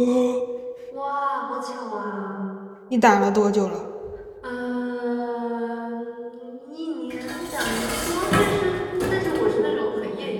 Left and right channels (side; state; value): both; identical; correlation 1.00